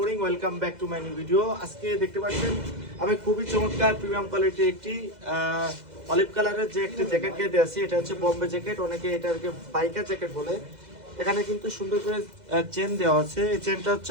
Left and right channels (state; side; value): late; left; 2.0 ms